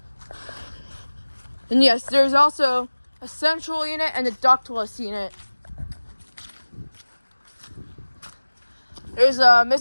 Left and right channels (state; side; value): inverted; both; correlation -1.00